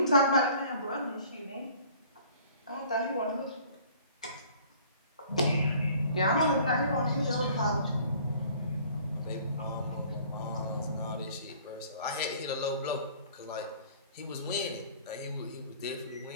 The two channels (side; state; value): both; inverted; correlation -0.52